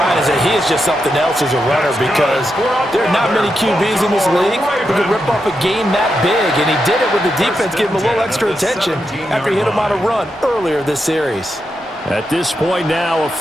is that he is just something else as a runner because there are not many QBs in this league who can rip off a game that big, and he did it with the defense giving him a little extra attention after he hit him on a run earlier this series. At this point now, a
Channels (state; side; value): normal; both; correlation 0.85